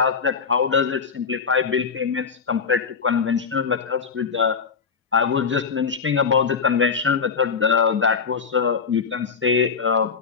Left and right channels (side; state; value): right; quieter; 5.8 dB